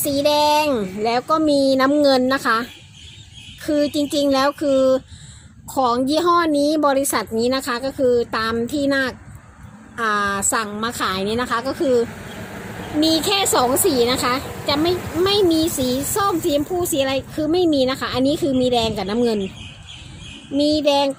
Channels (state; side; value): identical; both; correlation 1.00